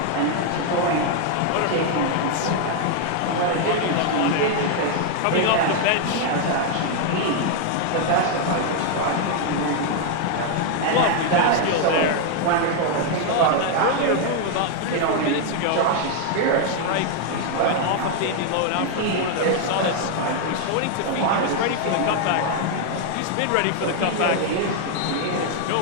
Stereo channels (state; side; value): different; both; correlation 0.00